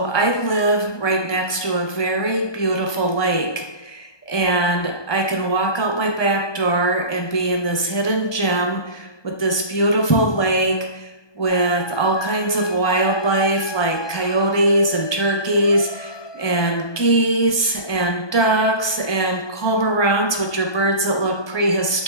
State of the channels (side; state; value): right; late; 1.2 ms